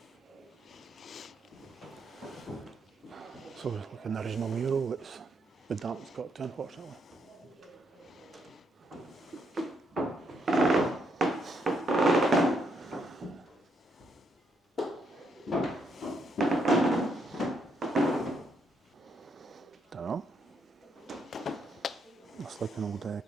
So it's like an original mural that's the damp's got to, unfortunately. Dunno. Looks like an old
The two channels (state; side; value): normal; both; correlation 0.76